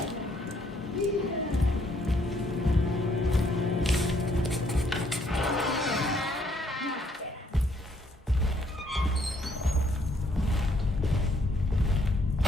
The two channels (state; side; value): normal; both; correlation 0.68